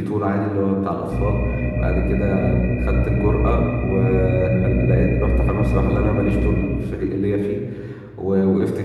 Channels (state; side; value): identical; both; correlation 1.00